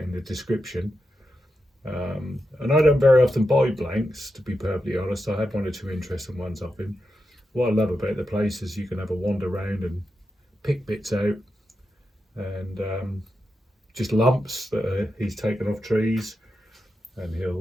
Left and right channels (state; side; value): normal; both; correlation 0.88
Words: in the description. And I don't very often buy blanks, to be perfectly honest. I had 1 or 2 interesting ones off him. What I love about the place is you can have a wander around and pick bits out, and just lumps that he's taken off trees, and